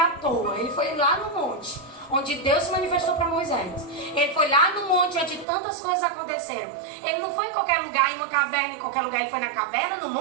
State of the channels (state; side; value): drops out; left; at 5.5 s